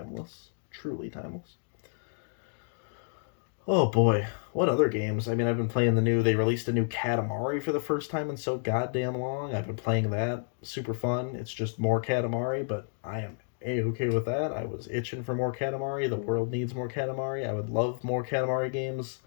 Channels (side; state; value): right; silent; digital silence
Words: Truly timeless. Oh boy, what other games? I mean, I've been playing they released a new Katamari for the first time in so goddamn long. I've been playing that. Super fun. It's just more Katamari, but I am A-okay with that. I was itching for more Katamari. The world needs more Katamari. I would love more Katamari games